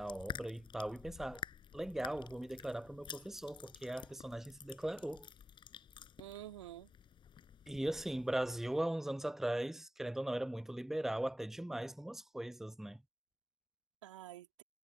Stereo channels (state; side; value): normal; both; correlation 0.93